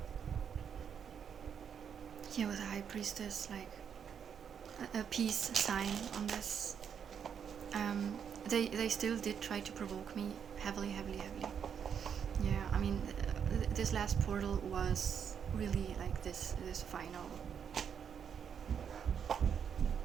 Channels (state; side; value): quieter; left; 7.6 dB